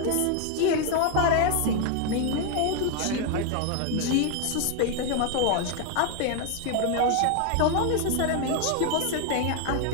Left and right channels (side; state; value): both; different; correlation 0.01